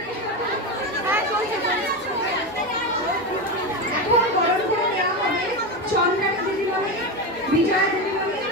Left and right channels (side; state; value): both; normal; correlation 0.16